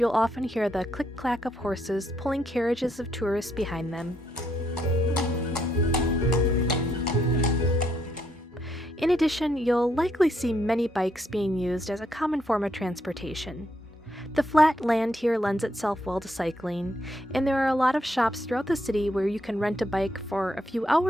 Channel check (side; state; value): both; normal; correlation 0.75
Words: often hear the click-clack of horses pulling carriages of tourists behind them. In addition, you'll likely see many bikes being used as a common form of transportation. The flat land here lends itself well to cycling, and there are a lot of shops throughout the city where you can rent a bike for a few